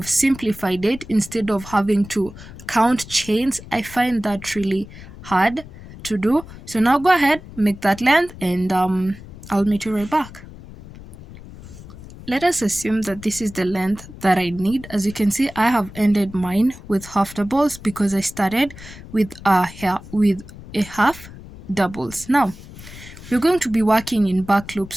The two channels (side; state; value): left; noise; rumble, 16 dB below the sound